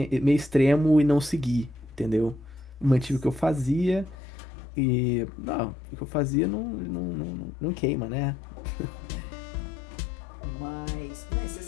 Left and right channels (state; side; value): drops out; right; at 4.2 s